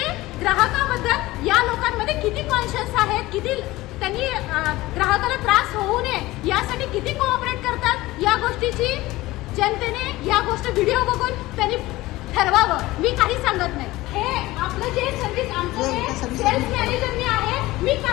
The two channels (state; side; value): quieter; right; 18.6 dB